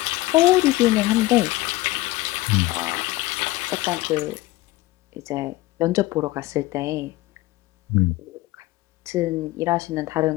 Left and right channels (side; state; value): right; quieter; 18.9 dB